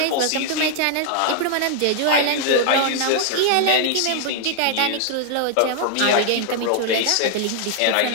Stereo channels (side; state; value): both; different; correlation 0.00